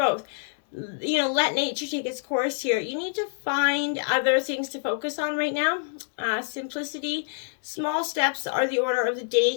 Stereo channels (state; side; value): silent; right; digital silence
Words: Let nature take its course here. You need to find other things to focus on right now. Simplicity, small steps are the order of the day